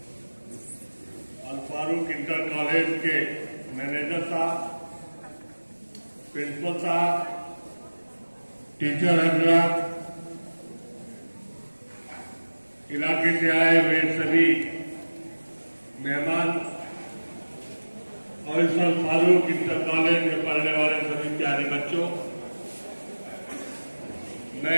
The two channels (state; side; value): inverted; both; correlation -1.00